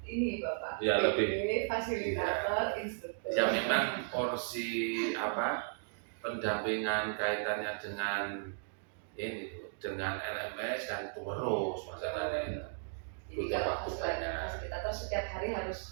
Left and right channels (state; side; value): silent; left; digital silence